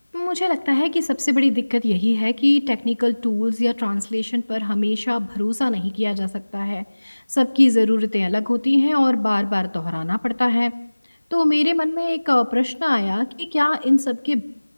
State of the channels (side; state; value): both; inverted; correlation -1.00